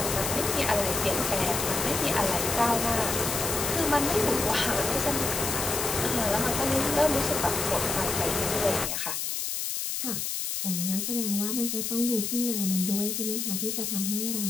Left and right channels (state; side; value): noise; left; hiss, 2 dB below the sound